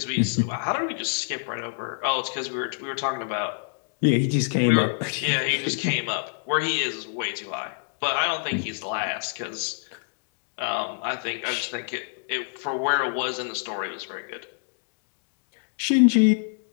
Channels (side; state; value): right; silent; digital silence